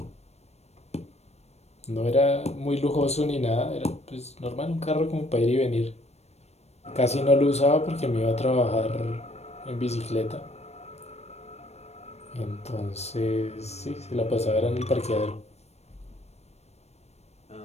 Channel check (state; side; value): late; right; 0.31 ms